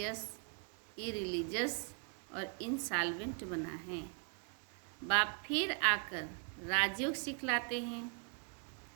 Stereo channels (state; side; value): quieter; left; 39.8 dB